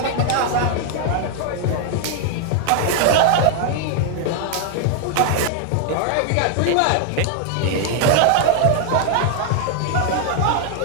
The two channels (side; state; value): both; different; correlation 0.00